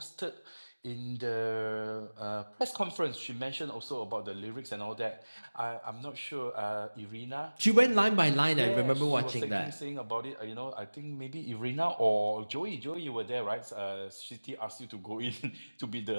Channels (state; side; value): inverted; both; correlation -1.00